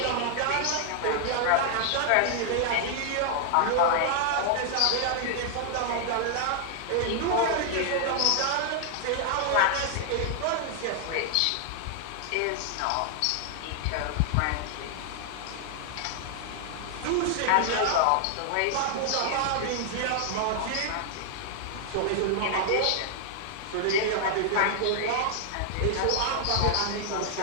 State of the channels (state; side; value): different; both; correlation 0.00